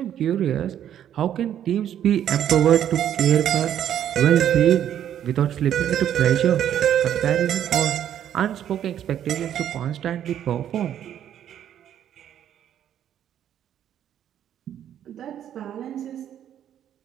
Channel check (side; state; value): left; quieter; 10.3 dB